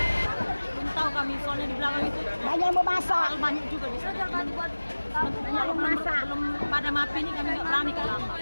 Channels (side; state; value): both; inverted; correlation -1.00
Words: Kami soalnya di belakang itu banyak yang mau masak. banyak juga bisa jangan buat banyak yang masak belum pada mapi ini kami nggak berani ke lama.